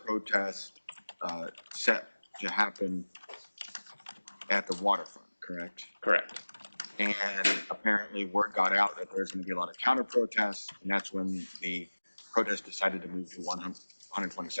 set to happen at the waterfront, correct? Correct. And apparently word got out that there's going to be a lot of counter protests, and that's when the protest decided to move to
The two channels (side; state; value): both; inverted; correlation -1.00